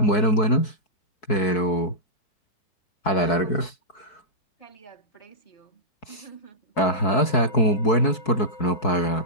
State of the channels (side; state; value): right; late; 4.6 ms